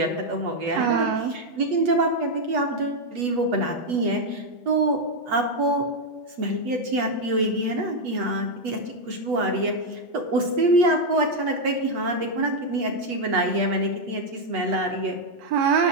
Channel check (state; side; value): late; left; 8.2 ms